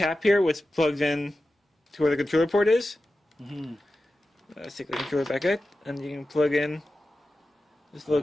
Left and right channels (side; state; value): both; normal; correlation 0.94